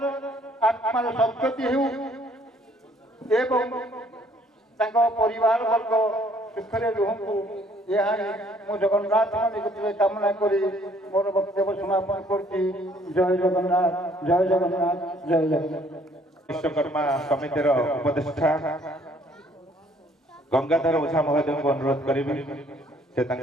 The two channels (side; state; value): both; normal; correlation 0.62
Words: ଆତ୍ମାର ସଦ୍ଗତି ହେଉ ଏବଂ ତାଙ୍କ ପରିବାର ବର୍ଗ ସୁଖରେ ରୁହନ୍ତୁ, ଏହା ହିଁ ମୁଁ ଜଗନ୍ନାଥଙ୍କ ନିକଟରେ କାମନା କରି ମୋର ବକ୍ତବ୍ୟ ସମାପନ କରୁଛି। ଜୟ ଜଗନ୍ନାଥ, ଜୟ ଜଗନ୍ନାଥ, ଜୟ ଜଗନ୍ନାଥ। ବିଶ୍ୱକର୍ମା ସମିତିର ଉପଦେଷ୍ଟା ଗଙ୍ଗାଧର ଓଝା ମହୋଦୟଙ୍କୁ ଅନୁରୋଧ କରିବି, ସେ